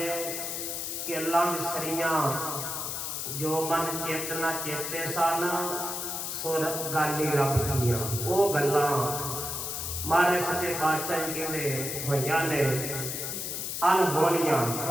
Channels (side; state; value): left; noise; hiss, 4 dB below the sound